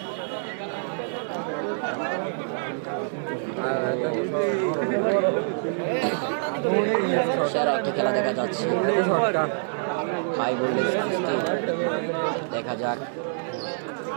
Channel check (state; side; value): silent; left; digital silence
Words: সেরা একটি খেলা দেখা যাচ্ছে, হাই ভোল্টেজ কুস্তি। দেখা যাক